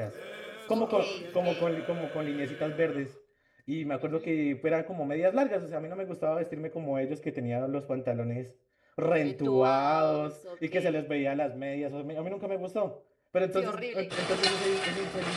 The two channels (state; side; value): identical; both; correlation 1.00